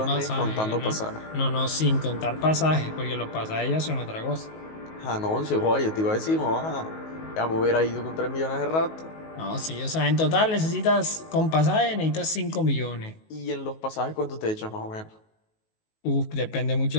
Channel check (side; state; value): right; late; 19 ms